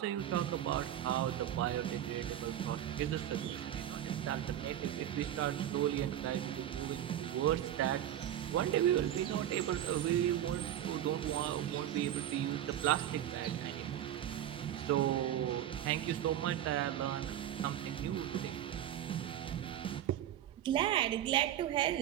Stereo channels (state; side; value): quieter; left; 11.5 dB